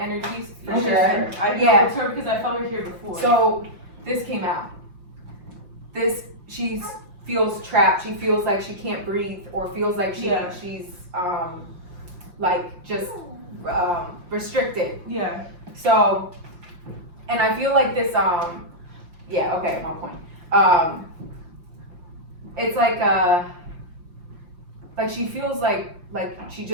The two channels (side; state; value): left; late; 5.7 ms